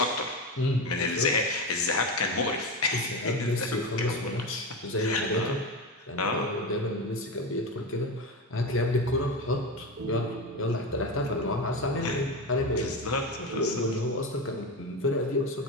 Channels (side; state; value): both; normal; correlation 0.19